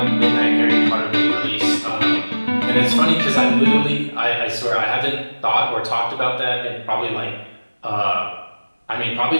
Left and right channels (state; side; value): inverted; both; correlation -1.00